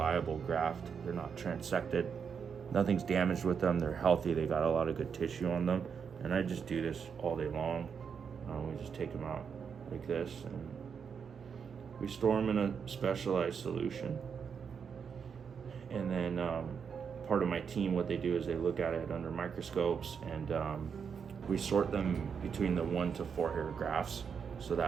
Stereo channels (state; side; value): quieter; left; 6.6 dB